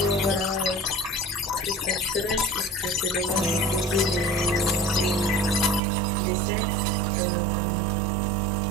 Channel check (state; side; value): drops out; left; at 5.8 s